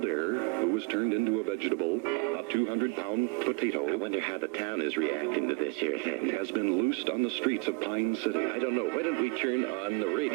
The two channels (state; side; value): quieter; left; 30.9 dB